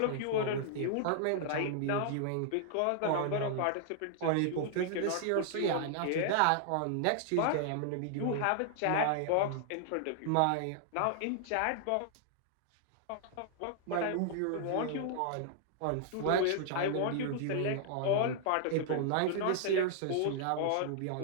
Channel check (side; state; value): both; different; correlation -0.01